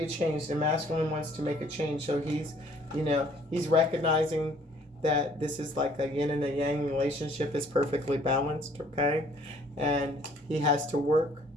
a change. The masculine wants to make a change. So he's, he's recognizing that this is like a yin and a yang relationship is perfectly balanced, okay? And he has to work.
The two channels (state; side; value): normal; both; correlation 0.59